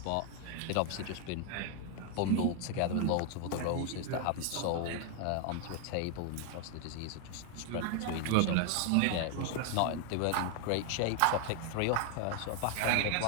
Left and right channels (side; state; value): both; different; correlation 0.00